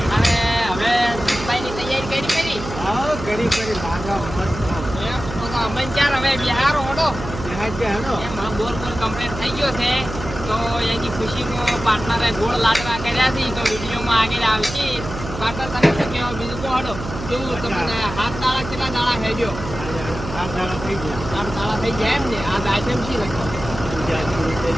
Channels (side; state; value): right; noise; hum, 9 dB below the sound